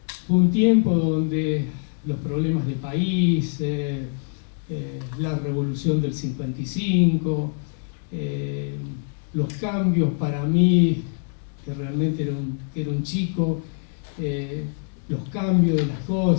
Fue un tiempo donde los problemas del país, la revolución del 55, los cambios para mí, que realmente era un chico, los cambios de las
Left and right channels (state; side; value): silent; right; 62 dB below the other